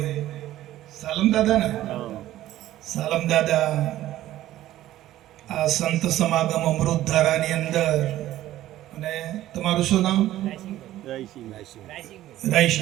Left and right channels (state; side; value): quieter; left; 14.1 dB